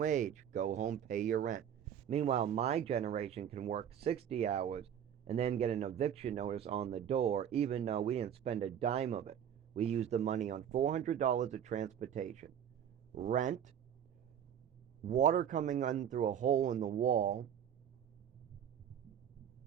go home, pay your rent. Meanwhile, my generation can work 60 hours and then get an eviction notice on the door, even though we didn't spend a dime of it. We used the money on $400 of transportation, rent, water coming in through a hole in the wall,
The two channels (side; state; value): left; quieter; 9.2 dB